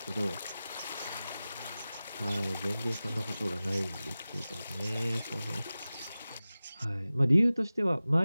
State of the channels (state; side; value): inverted; both; correlation -0.96